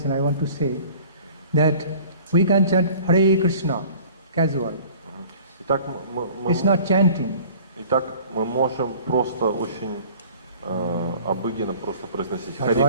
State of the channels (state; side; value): inverted; both; correlation -0.48